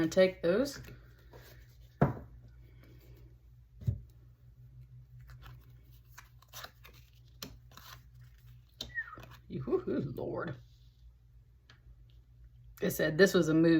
to take those. Lord. It said this was a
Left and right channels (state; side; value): identical; both; correlation 1.00